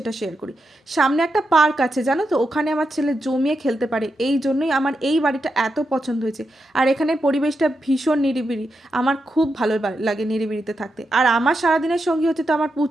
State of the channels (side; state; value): both; normal; correlation 0.86